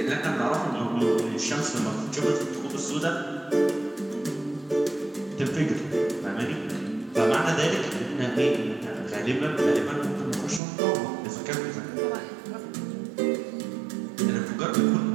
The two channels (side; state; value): left; drops out; at 10.6 s